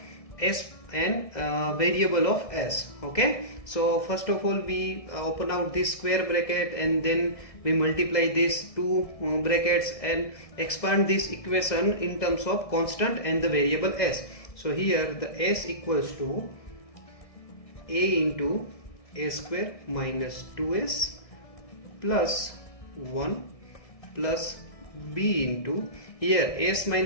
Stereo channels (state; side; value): late; right; 1.6 ms